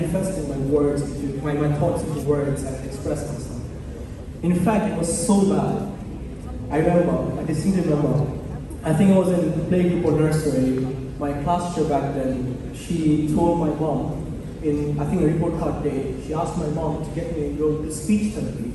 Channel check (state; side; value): identical; both; correlation 1.00